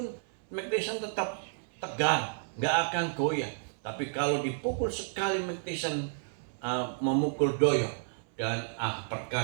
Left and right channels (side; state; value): left; silent; 57 dB below the other